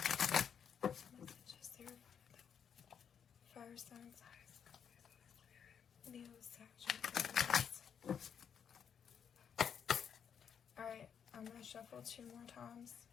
Messages there for the fire signs, Leo, Sagittarius. Alright, I'm going to shuffle 2 more times.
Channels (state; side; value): quieter; right; 7.7 dB